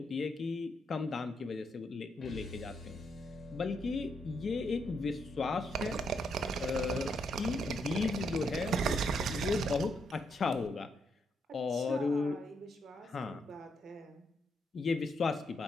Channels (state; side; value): normal; both; correlation 0.78